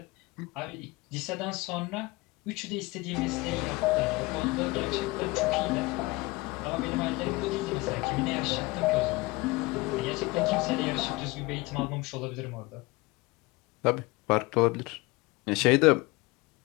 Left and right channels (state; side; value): quieter; right; 22.9 dB